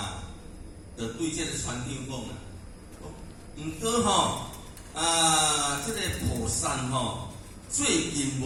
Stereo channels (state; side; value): identical; both; correlation 1.00